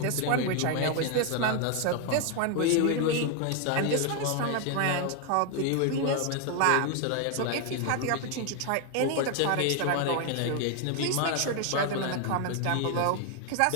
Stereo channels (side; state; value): both; different; correlation 0.01